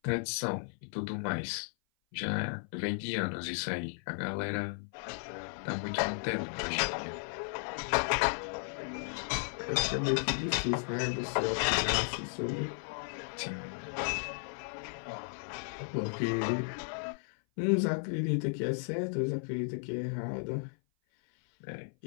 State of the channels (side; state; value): right; silent; 55 dB below the other